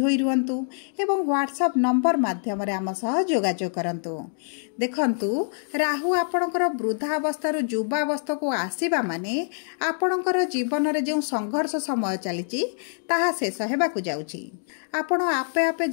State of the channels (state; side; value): silent; right; digital silence